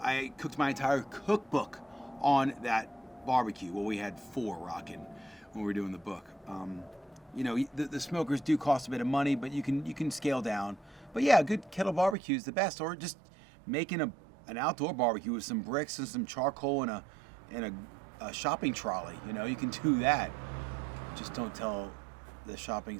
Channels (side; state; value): left; drops out; at 12.2 s